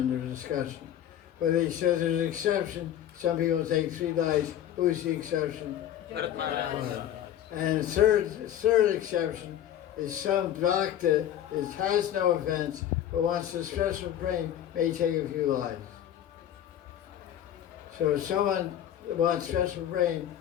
discussion. But he says there's an exception. Some people take 3 lives. Who's the exception? Bharat Maharaj. And the third exception is some bhakta has no offense, but wants a special praying may take a few lives. So if someone wants special praying,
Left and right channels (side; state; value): right; quieter; 10.9 dB